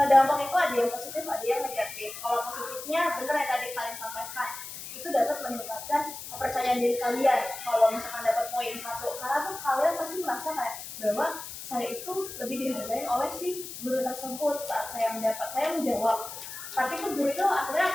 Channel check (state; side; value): noise; left; hiss, 10 dB below the sound